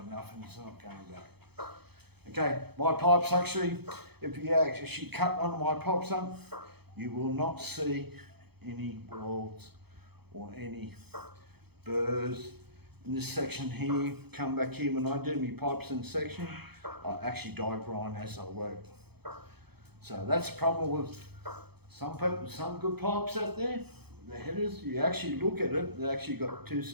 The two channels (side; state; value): left; late; 0.97 ms